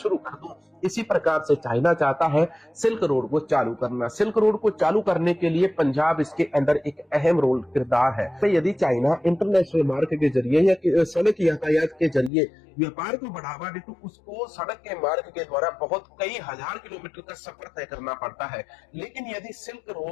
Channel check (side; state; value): right; drops out; at 12.3 s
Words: कर दूं। इसी प्रकार से चाइना चाहता है सिल्क रोड को चालू करना। सिल्क रोड को चालू करने के लिए पंजाब इसके अंदर एक अहम रोल किरदार है। तो यदि चाइना इंटरनेशनल मार्ग के जरिए या सड़क यातायात के जरिए व्यापार को बढ़ावा दे तो उसको सड़क के मार्ग के द्वारा बहुत कई हजार किलोमीटर का सफर तय करना पड़ता है। लेकिन यदि सिल्क